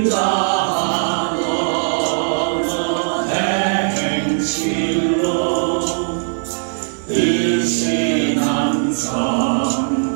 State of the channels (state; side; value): silent; left; digital silence